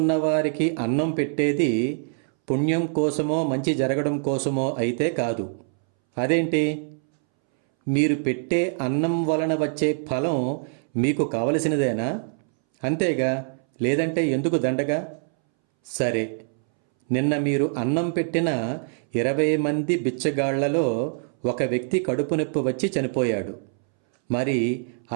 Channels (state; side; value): silent; left; 62 dB below the other